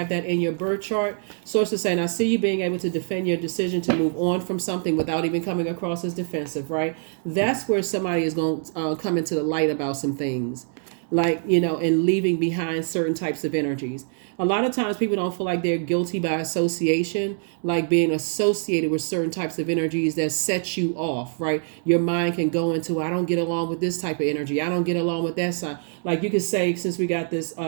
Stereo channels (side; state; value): left; silent; 58 dB below the other